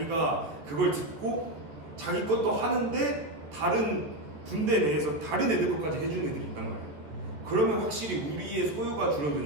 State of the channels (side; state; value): left; late; 13 ms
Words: 그걸 듣고 자기 것도 하는데 다른 군대 내에서 다른 애들 것까지 해주는 애들이 있단 말이야. 그러면 확실히 우리의 소요가